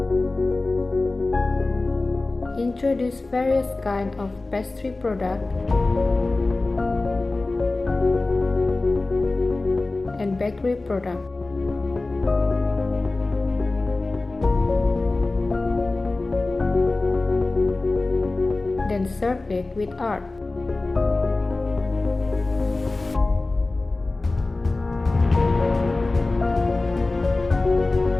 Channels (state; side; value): quieter; right; 3.2 dB